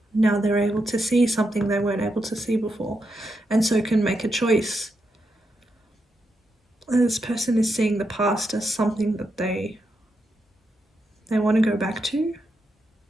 Now they're able to see something they weren't able to see before, and so can make a choice. And this person is seeing the past as something that they want to go back to,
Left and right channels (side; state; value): both; normal; correlation 0.84